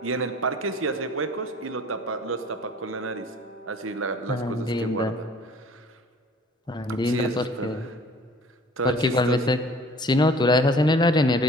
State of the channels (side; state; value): both; normal; correlation 0.50